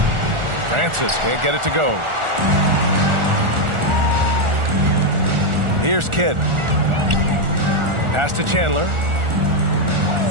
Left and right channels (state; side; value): late; left; 1.4 ms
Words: Francis can't get it to go. Here's Kidd. Pass to Chandler.